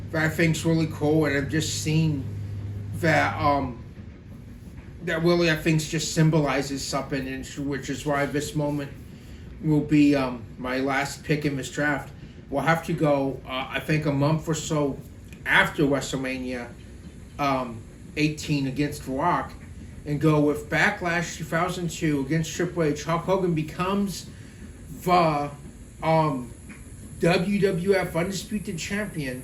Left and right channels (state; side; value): identical; both; correlation 1.00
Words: that I think's really cool, and I've just seen that that really I think just symbolizes something, and which is why this moment will be my last pick in this draft. We'll have to go, I think, a month or so after WrestleMania 18 against The Rock, and go with Backlash 2002 against Triple H. Hulk Hogan becomes the WWF Undisputed Champion